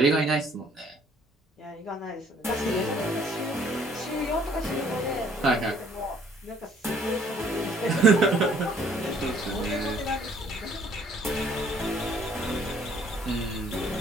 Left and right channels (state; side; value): normal; both; correlation 0.61